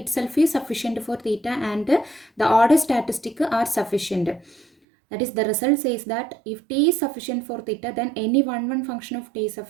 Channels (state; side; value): drops out; left; at 4.7 s